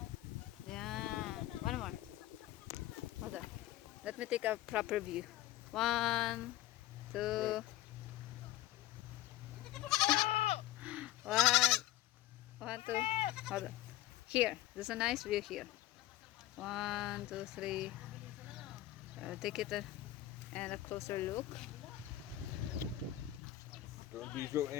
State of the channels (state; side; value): quieter; right; 14.7 dB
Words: Yeah. One more. Hold on. Let me take a proper view. 1, 2. 1, 1, 2. Hold on. Here. There's a nice view here. 1, 2, 3. Take it and a closer look. Don't be so